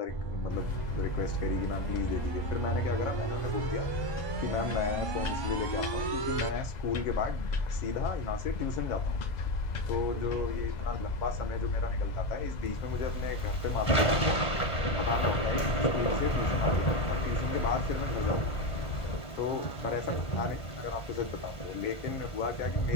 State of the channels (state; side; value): late; right; 1.5 ms